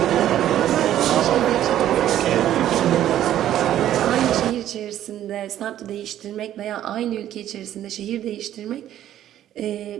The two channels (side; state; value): left; quieter; 11.9 dB